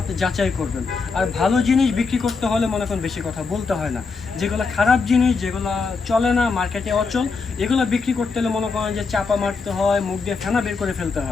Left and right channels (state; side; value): quieter; right; 4.6 dB